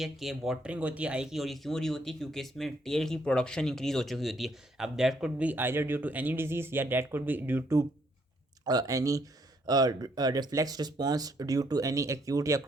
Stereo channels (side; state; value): both; normal; correlation 0.70